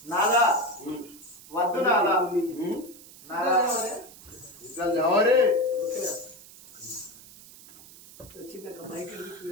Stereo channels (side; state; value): right; noise; hiss, 20 dB below the sound